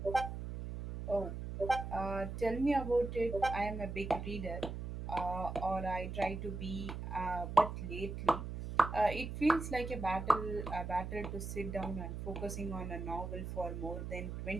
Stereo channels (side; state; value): right; noise; hum, 6 dB below the sound